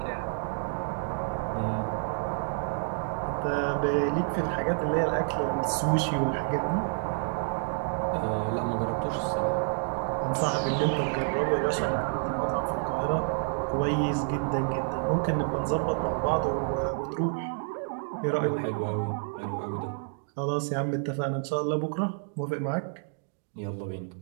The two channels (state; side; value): silent; left; 59 dB below the other